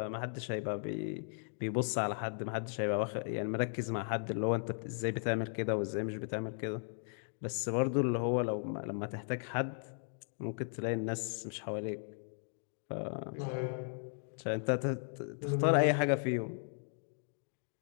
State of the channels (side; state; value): right; silent; digital silence